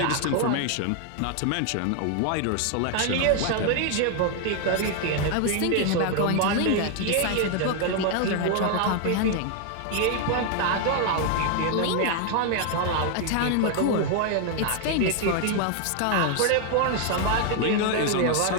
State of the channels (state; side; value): different; both; correlation 0.00